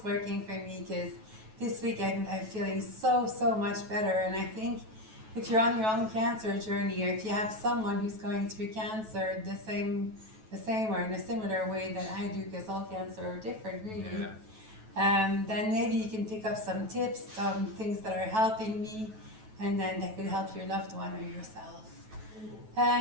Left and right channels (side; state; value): left; late; 9.2 ms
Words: working for me, because this week I'm feeling so much better. And I think if you're on your own cancer journey, or if you have someone who's going through cancer the same or in a similar way that I do, because all cancer are different really, then maybe you can pick up some tips, some things that are helping me, and then that could help your loved one or yourself.